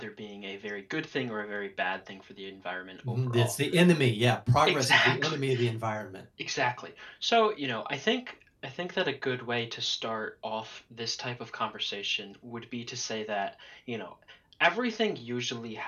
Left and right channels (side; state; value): both; identical; correlation 1.00